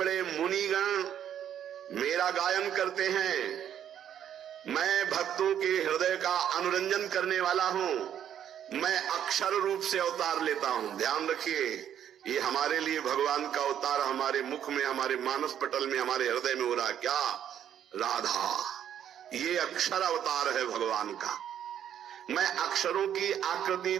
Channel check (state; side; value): quieter; left; 9.8 dB